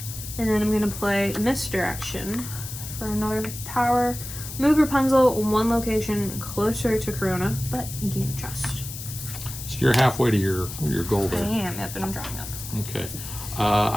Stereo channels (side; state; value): left; noise; hiss, 10 dB below the sound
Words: And then I'm gonna play Misdirection for another power. Move Rapunzel 1 location closer to Corona, but you gain a trust. So you're halfway to your goal I there. am, yep, and I'm drawing up. Okay.